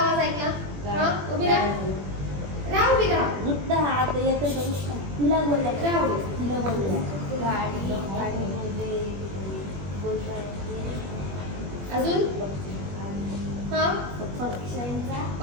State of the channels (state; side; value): late; left; 21 ms